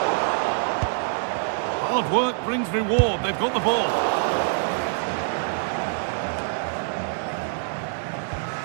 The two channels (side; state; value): left; silent; 62 dB below the other